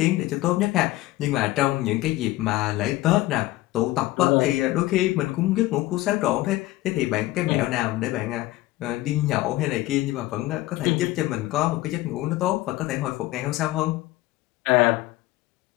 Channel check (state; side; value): quieter; right; 17.6 dB